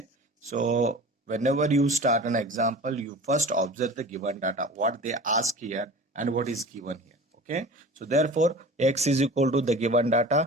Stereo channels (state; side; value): normal; both; correlation 0.38